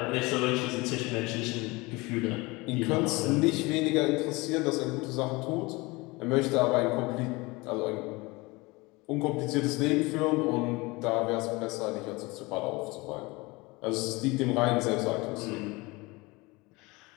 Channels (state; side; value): quieter; right; 24.0 dB